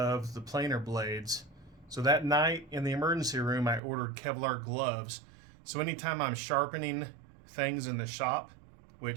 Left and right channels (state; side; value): drops out; left; at 3.8 s